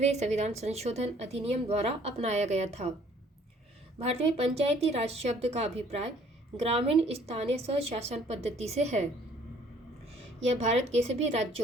संविधान संशोधन अधिनियम द्वारा अपनाया गया था। भारत में पंचायती राज शब्द का अभिप्राय ग्रामीण स्थानीय स्वशासन पद्धति से है। यह भारत के सभी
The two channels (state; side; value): normal; both; correlation 0.58